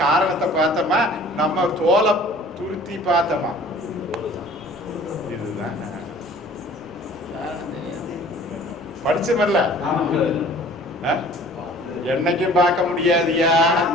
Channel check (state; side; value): normal; both; correlation 0.50